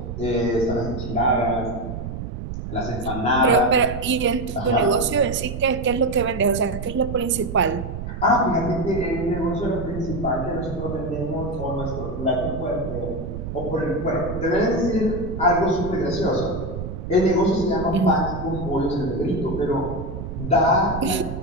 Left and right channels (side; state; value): right; noise; rumble, 7 dB below the sound